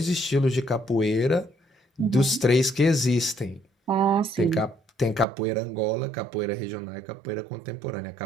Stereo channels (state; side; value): drops out; left; at 5.2 s